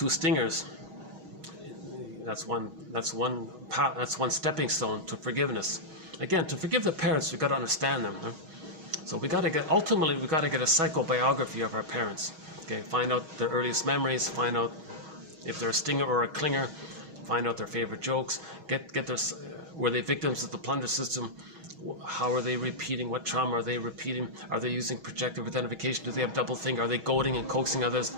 stingers, that's one stepping stone to forgiveness. Again, to forgive the parents, we've got to understand them. Huh? So ultimately we got to get a psychobiography of our parents. Okay, find out their earliest memories, find out if they're a stinger or a clinger, find out their favorite jokes, were they victims of the plunder system? How are they repeating? What trauma are they repeating? Are they using projective identification? Do they have double think? Are they goading and coaxing others?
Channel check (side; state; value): left; late; 6.3 ms